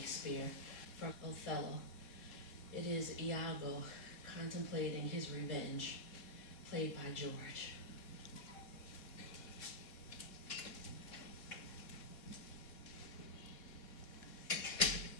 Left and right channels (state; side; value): late; right; 3.7 ms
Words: from Othello. It is Iago contemplating his revenge, played by George.